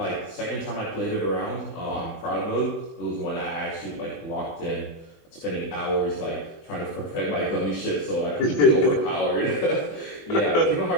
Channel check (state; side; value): late; right; 24 ms